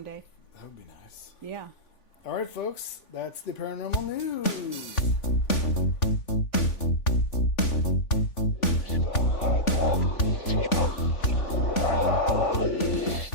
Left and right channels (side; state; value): right; late; 3.5 ms